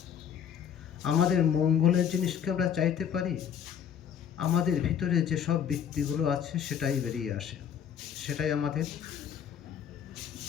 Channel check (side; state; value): right; quieter; 8.5 dB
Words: আমাদের মঙ্গলের জিনিসকে আমরা চাইতে পারি? আমাদের ভিতরে যেসব বৃত্তিগুলো আছে সেটাই বেরিয়ে আসে, সেটাই আমাদের